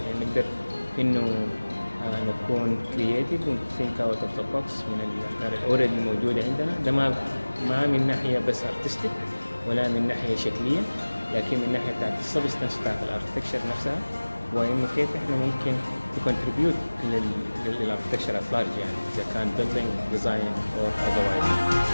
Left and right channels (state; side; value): inverted; both; correlation -1.00